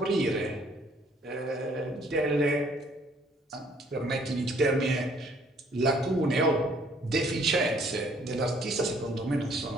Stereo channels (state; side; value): normal; both; correlation 0.62